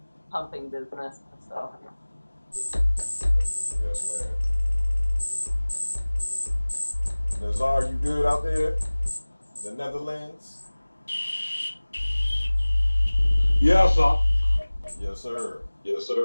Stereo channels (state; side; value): inverted; both; correlation -1.00